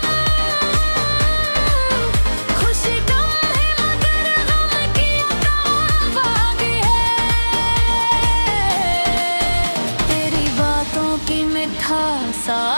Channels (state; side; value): inverted; both; correlation -1.00